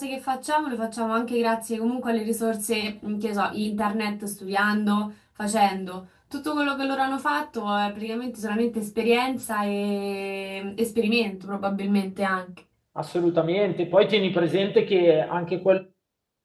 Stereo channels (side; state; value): both; identical; correlation 1.00